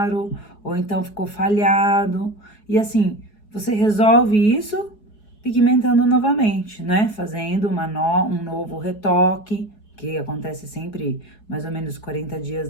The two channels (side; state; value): right; late; 4.7 ms